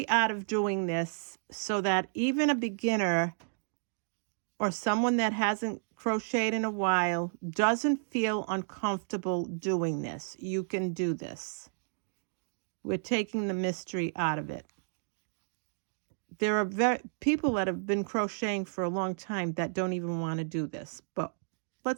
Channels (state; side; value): silent; left; digital silence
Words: out of doing this so that even a beginner or someone that hasn't crocheted in a while doesn't feel uncomfortable doing this. You can do this. We're taking the mystery out of it. There are people that have been crocheting for a long time that don't even want to do this, but